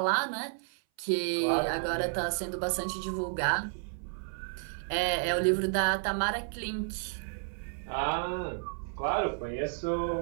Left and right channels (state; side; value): silent; left; 57 dB below the other